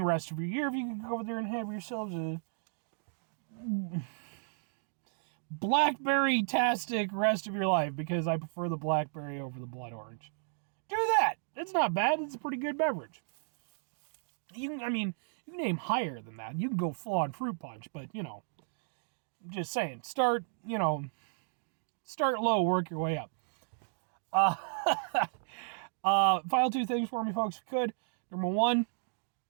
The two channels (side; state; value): left; silent; digital silence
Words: rest of your year. If you can go over there and have yourselves a blackberry-tastic rest of your life, because I prefer the blackberry over the blood orange. Do that. It's not bad. It's a pretty good beverage. You can name higher than that. You can go full-on fruit punch, but, I'm just saying, start low, work your way up. Final 2 things for me, folks, if you could. Number 1,